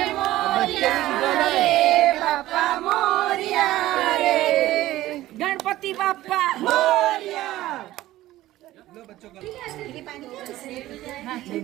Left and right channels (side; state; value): left; quieter; 15.6 dB